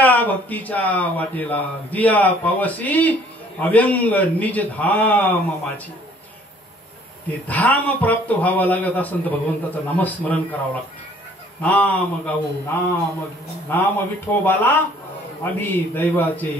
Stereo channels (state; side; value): normal; both; correlation 0.58